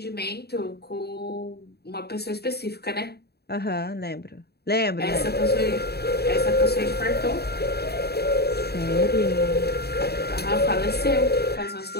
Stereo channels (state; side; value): late; right; 0.47 ms